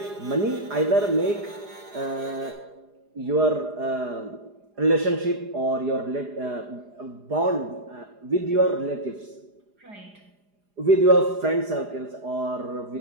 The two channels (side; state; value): left; late; 4.9 ms